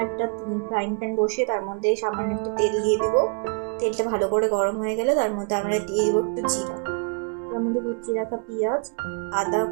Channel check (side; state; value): left; quieter; 39.3 dB